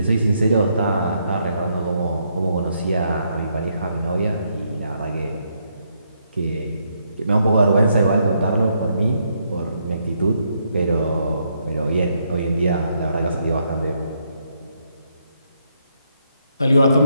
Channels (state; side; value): inverted; both; correlation -0.76